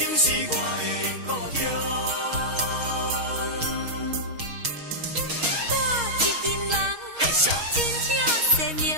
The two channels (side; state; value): left; late; 6.3 ms